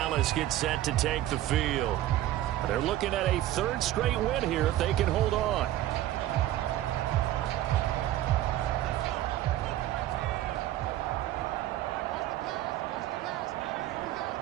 gets set to take the field. They're looking at a 3rd straight win here if they can hold on.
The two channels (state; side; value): quieter; left; 13.9 dB